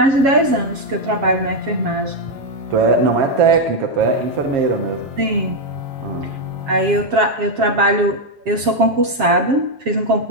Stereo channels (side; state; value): left; late; 7.4 ms